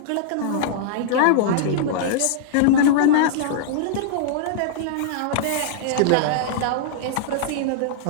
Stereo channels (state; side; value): different; both; correlation -0.02